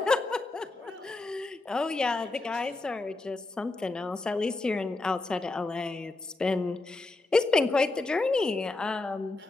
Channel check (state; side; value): quieter; right; 3.2 dB